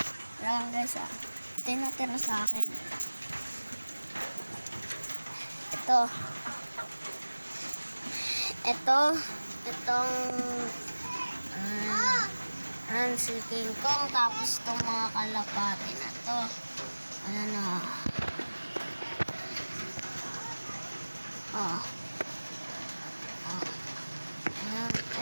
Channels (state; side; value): inverted; both; correlation -1.00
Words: Ayan guys Ito yung natira sa akin. Itong si King Kong, tapos itong mga kalapati na to. Ayan